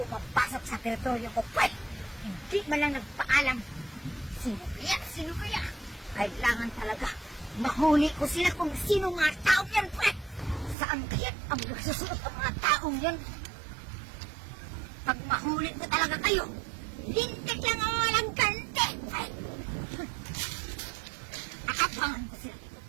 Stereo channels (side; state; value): left; drops out; at 10.8 s